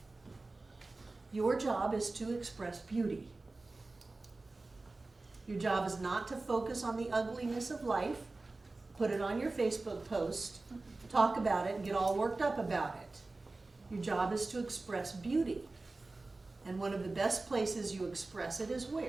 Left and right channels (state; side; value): quieter; left; 3.3 dB